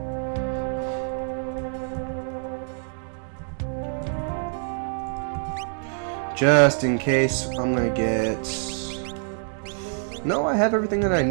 Just in case, I'm gonna get... No, I have everything that I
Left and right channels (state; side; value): silent; left; digital silence